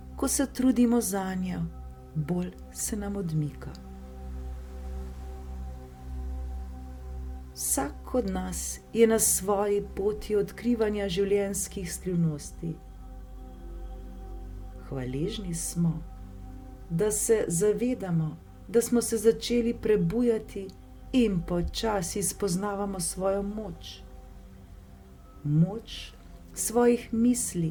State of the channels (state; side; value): identical; both; correlation 1.00